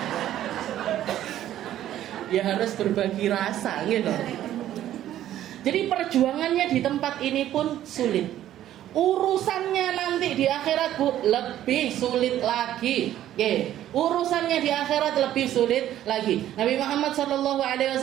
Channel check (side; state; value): left; quieter; 12.3 dB